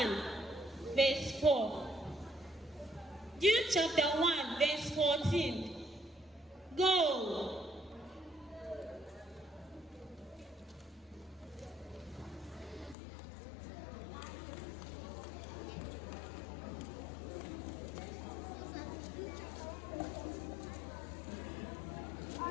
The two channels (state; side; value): drops out; right; at 13.0 s